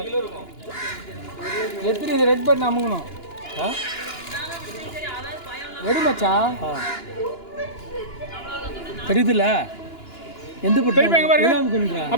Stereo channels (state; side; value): late; right; 2.9 ms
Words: எத்தனை இது ரெட் பட்டன் அமுங்கணும் எடு மச்சான் தெரியுதுல்ல எந்த பட்டன்